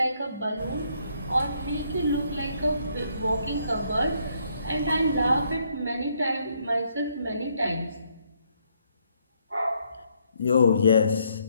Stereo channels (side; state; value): both; inverted; correlation -0.72